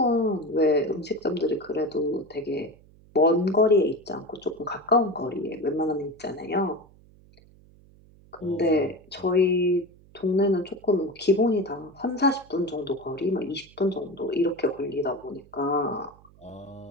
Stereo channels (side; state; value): right; noise; hum, 26 dB below the sound